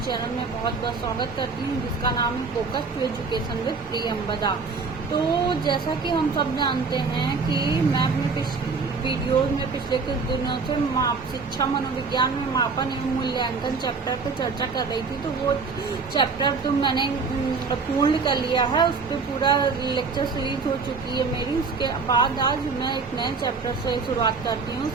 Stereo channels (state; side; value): quieter; left; 4.7 dB